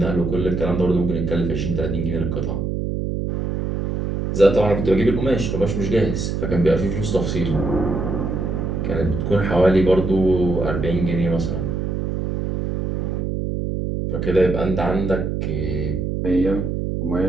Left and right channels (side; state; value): right; noise; hum, 2 dB below the sound